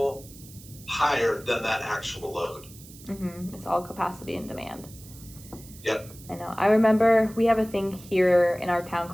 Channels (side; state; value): right; noise; hiss, 20 dB below the sound